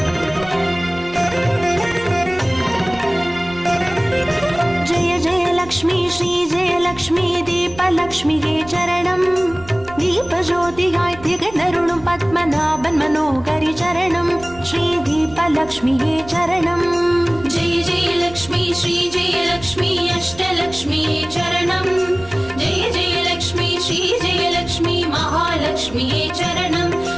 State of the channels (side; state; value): right; noise; rumble, 18 dB below the sound